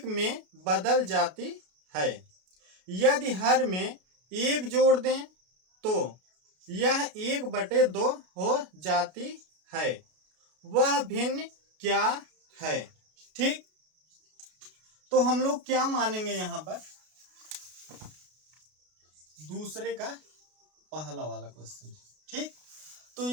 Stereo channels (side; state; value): left; late; 33 ms